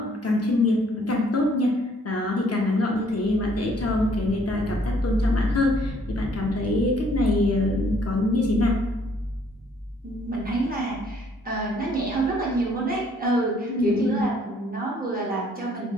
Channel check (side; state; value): both; normal; correlation 0.63